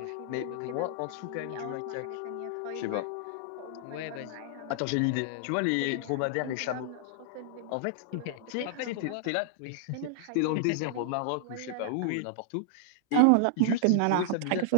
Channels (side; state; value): both; different; correlation -0.01